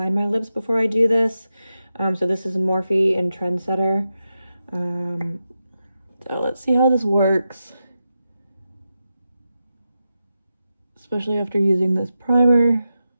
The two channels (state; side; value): inverted; both; correlation -0.89